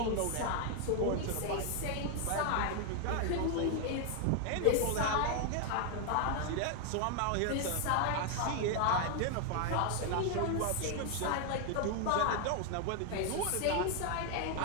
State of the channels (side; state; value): both; different; correlation 0.00